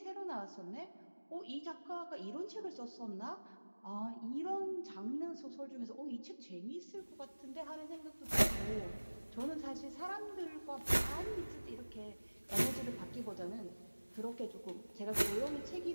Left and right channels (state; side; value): inverted; both; correlation -1.00